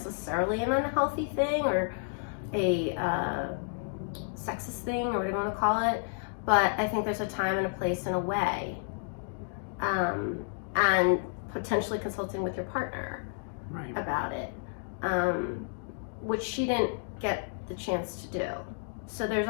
an unhealthy thing or a sexist thing or whatever you want to call it. But I think there's a time and a place and a way. And potentially consulting with your partner about it, which she didn't get the chance to do. So there's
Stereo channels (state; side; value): silent; right; digital silence